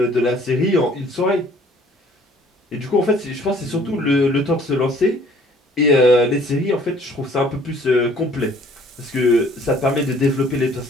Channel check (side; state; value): both; normal; correlation 0.56